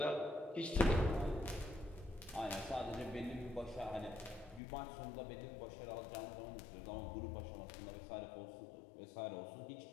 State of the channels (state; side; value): drops out; right; at 4.6 s